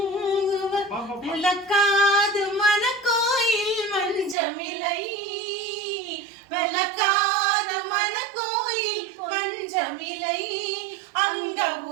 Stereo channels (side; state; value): left; drops out; at 4.4 s